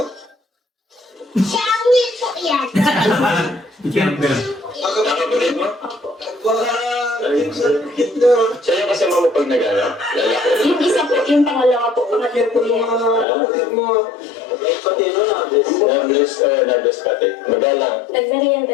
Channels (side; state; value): right; drops out; at 13.2 s